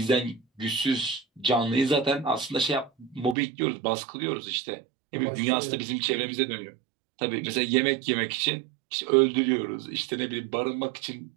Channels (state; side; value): drops out; left; at 3.4 s